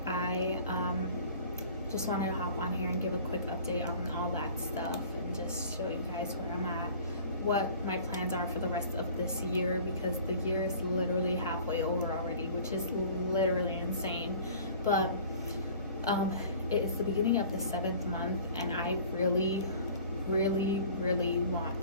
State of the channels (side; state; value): both; inverted; correlation -0.47